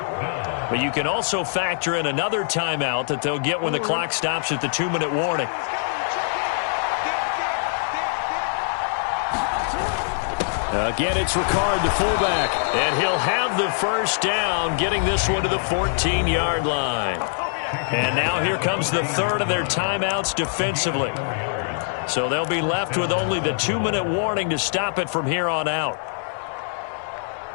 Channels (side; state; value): right; silent; digital silence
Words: But you can also factor in another timeout that they'll get when the clock stops at the 2-minute warning. Again, it's Ricard, the fullback, and he'll have the first down, getting this one to the 14-yard line. And now here comes the third of their timeouts defensively. So they'll be left with only the 2-minute warning to stop it from here on out.